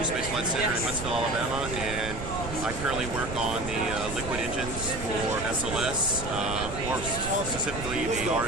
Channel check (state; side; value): noise; right; rumble, 8 dB below the sound